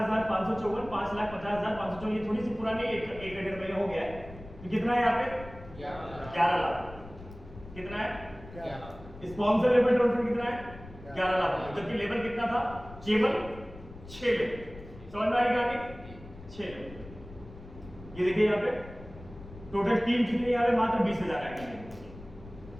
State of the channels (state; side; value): noise; left; rumble, 16 dB below the sound